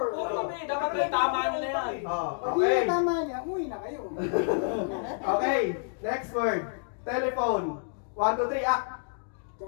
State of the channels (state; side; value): silent; right; digital silence